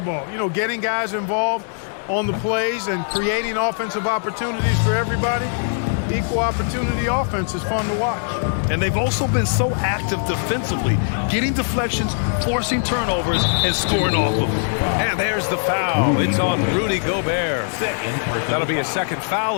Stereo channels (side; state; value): right; silent; 65 dB below the other